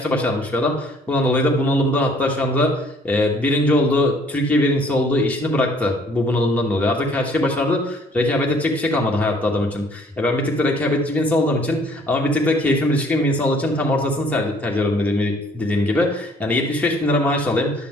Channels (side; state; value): both; normal; correlation 0.59